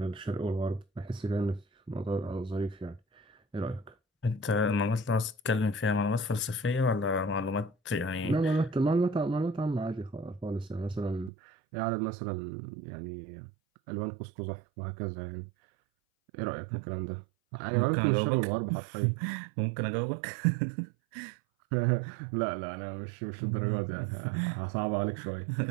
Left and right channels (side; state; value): left; drops out; at 11.3 s